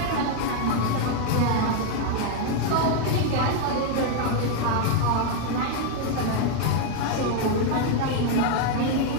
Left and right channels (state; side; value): different; both; correlation 0.01